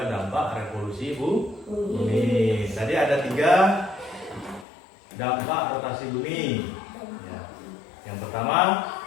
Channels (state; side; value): drops out; right; at 4.7 s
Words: dampak revolusi bumi. Tadi ada 3 dampak rotasi bumi. Ya. Yang pertama,